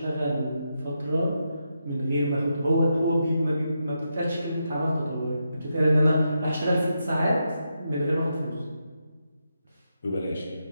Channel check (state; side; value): inverted; both; correlation -0.84